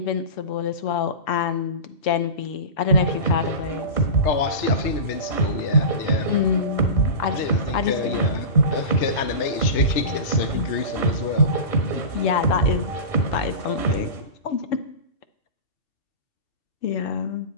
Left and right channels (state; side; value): late; right; 2.7 ms